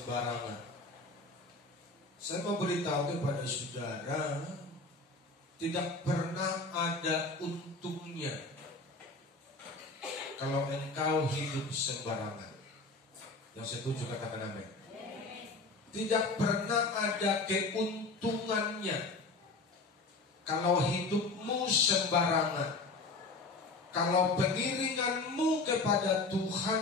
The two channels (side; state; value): right; quieter; 3.5 dB